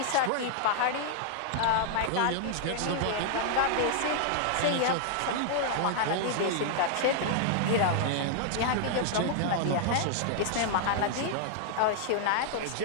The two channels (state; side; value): different; both; correlation -0.01